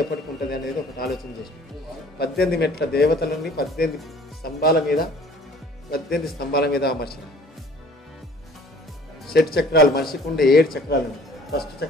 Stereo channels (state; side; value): normal; both; correlation 0.51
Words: ఎప్పటికి ఉంటుంది అనేది ఒకటి ఆలోచన చేసినాను. 18 మెట్ల దేవతలని 18 స్తంభాల మీద అమర్చిన. 7 చక్రాలు, మనిషికి ఉండే 7 చక్రాలు ఉంటాయి. ఫస్ట్